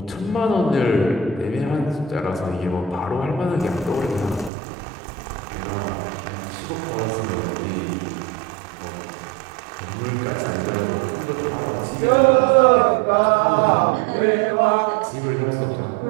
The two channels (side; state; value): left; drops out; at 4.5 s